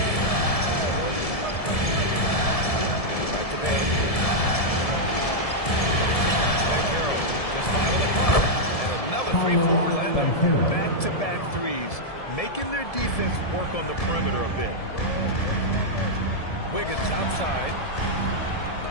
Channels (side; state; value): right; late; 1.7 ms